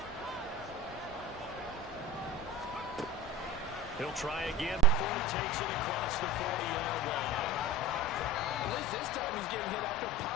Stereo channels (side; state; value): left; noise; rumble, 19 dB below the sound